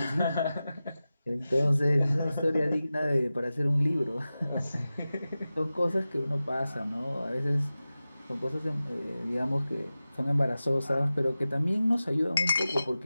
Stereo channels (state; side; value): inverted; both; correlation -0.95